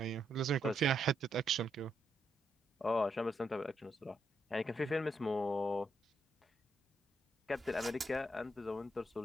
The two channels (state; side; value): normal; both; correlation 0.79